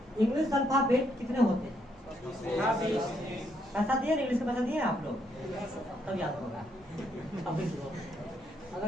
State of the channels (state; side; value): noise; right; rumble, 28 dB below the sound